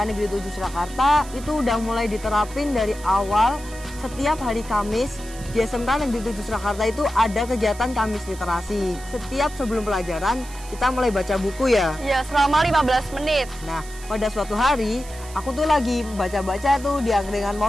Negeri 7 Surakarta itu udah mulai diterapin dari awal. Setiap hari Kamis di SMK Negeri 7 Surakarta itu ada kegiatan Kamis Literasi. Setiap sebelum pelajaran kita mulai baca buku ya. Ya, selama 15 menit. Nah, pada suatu hari aku tuh lagi baca-baca tuh di angkringan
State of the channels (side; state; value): right; noise; hiss, 17 dB below the sound